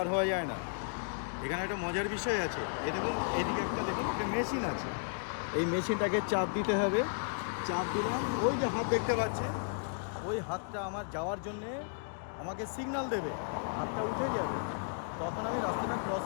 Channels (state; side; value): silent; right; digital silence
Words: হওয়া যায় না। এখানে একটা মজার বিষয় আছে, এই দেখুন এদিকে একটা দেখুন একটা মেশিন আছে, এই মেশিনটাকে চাপ দিতে হবে, চাপ দিলাম, ওই যে হাত দেখতে পাচ্ছেন, ওই হাতটা আমার যাওয়ার জন্যে আমাকে সিগন্যাল দেবে, হাতটা উঠে যাবে, তখন আমি রাস্তাটা ক্রস